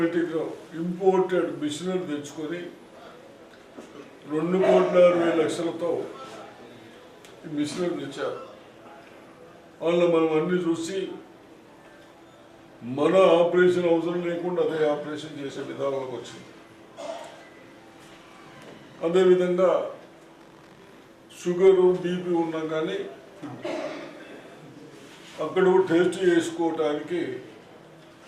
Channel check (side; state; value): both; identical; correlation 1.00